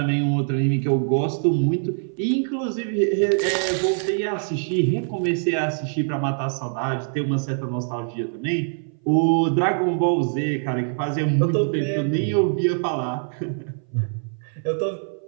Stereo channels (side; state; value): left; silent; 59 dB below the other